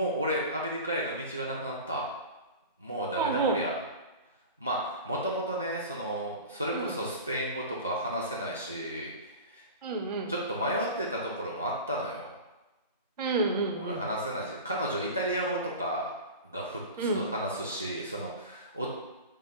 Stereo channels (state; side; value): inverted; both; correlation -0.32